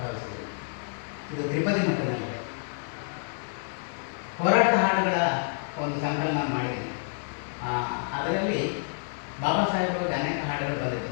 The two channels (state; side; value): silent; right; digital silence